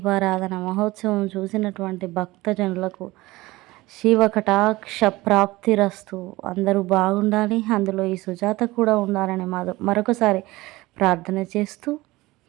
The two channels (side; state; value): left; quieter; 19.8 dB